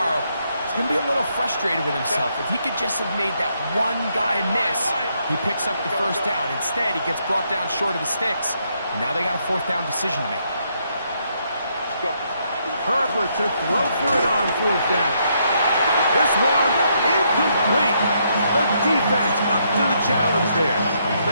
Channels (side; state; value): both; inverted; correlation -0.75